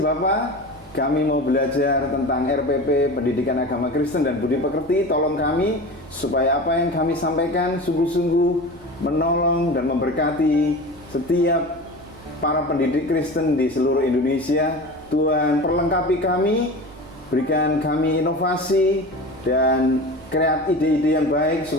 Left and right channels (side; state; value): right; noise; hum, 25 dB below the sound